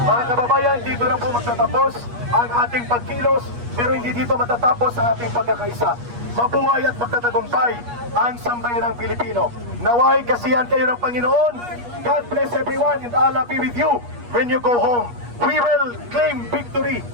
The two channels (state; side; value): late; left; 8.4 ms